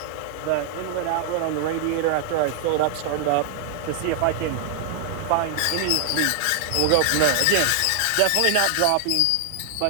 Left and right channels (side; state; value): both; different; correlation 0.00